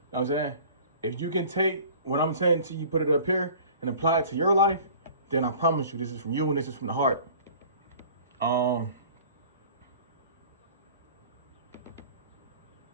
what I'm saying? If you can take what I'm saying to you, put it up here and apply it to your life, then I promise you this is from you and this is from the heart.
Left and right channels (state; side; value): inverted; both; correlation -0.46